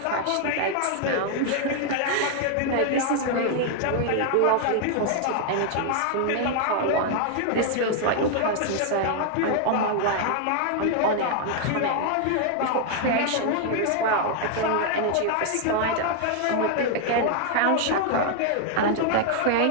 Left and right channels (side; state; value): both; different; correlation 0.00